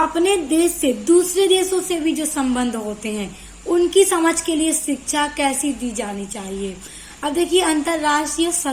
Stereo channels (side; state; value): both; identical; correlation 1.00